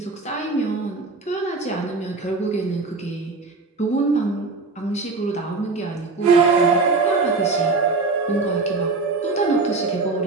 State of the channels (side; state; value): left; quieter; 3.9 dB